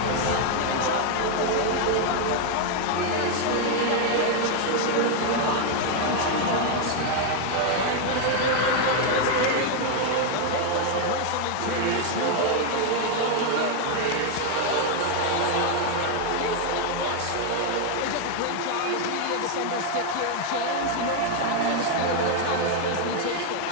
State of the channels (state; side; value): different; both; correlation 0.01